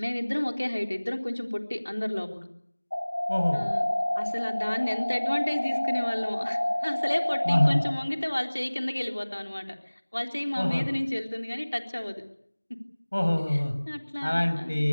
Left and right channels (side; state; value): both; inverted; correlation -1.00